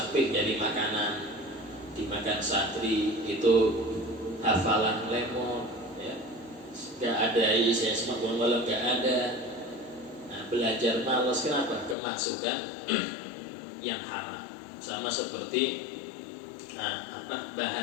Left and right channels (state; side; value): drops out; right; at 12.0 s